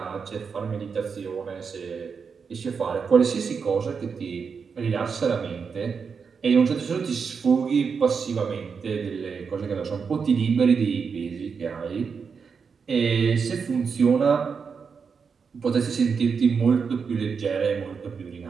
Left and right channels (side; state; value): left; quieter; 5.8 dB